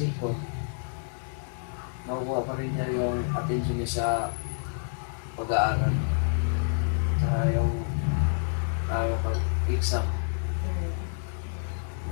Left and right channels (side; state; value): right; silent; digital silence